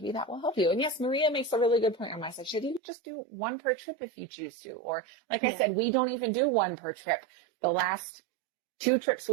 that will help you. And yes, Maria makes a really good point on my side. Should you just do one per trip if you choose to? Or like I said, we don't even do one per trip. The last 2 trips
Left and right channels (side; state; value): left; drops out; at 2.8 s